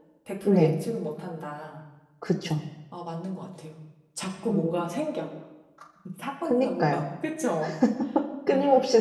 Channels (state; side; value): identical; both; correlation 1.00